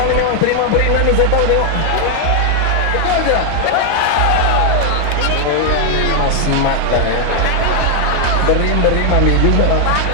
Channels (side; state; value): both; different; correlation 0.00